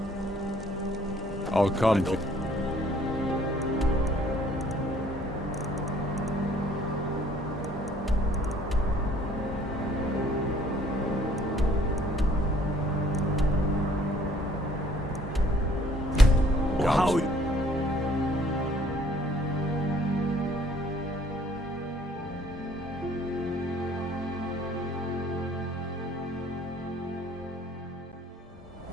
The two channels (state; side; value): normal; both; correlation 0.59